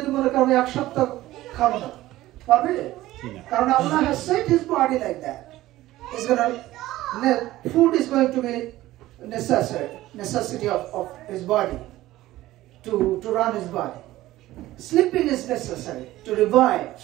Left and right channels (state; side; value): quieter; left; 16.1 dB